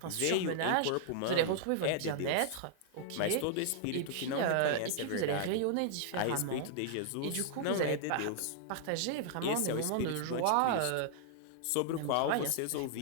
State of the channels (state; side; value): different; both; correlation -0.01